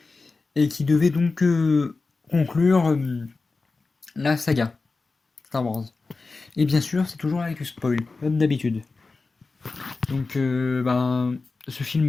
et qui devait donc conclure la saga Star Wars. Et bien sûr, c'est toujours avec du spoil, comme d'habitude. Donc, ce film,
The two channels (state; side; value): quieter; right; 3.9 dB